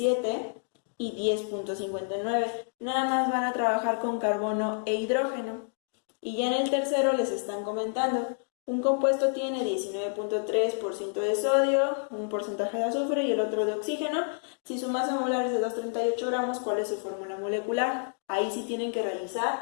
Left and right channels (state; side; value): silent; right; digital silence